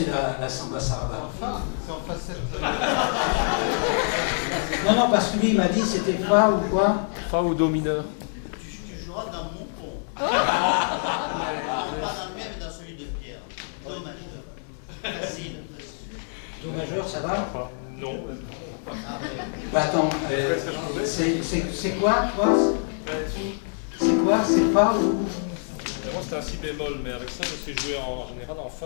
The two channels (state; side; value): silent; right; 61 dB below the other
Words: la samba sarava? C'est en facette. Non, parce que lui il m'a dit c'était fa ou quoi? Fa ou do mineur. Tu joueras dans mon ton. Non, pas dans le mien, mais dans celui de Pierre. Do majeur. Facile. Do majeur, ça va? Non. Bah attends, c'est quoi toi? C'est quoi? C'est fa ou? Moi c'est un si bémol, mais avec ça je sais jouer en général en